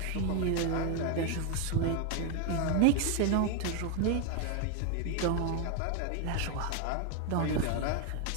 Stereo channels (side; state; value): both; different; correlation 0.01